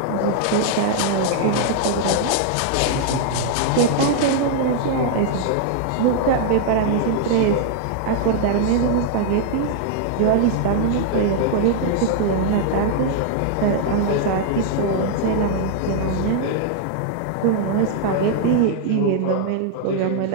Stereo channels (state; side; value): different; both; correlation -0.01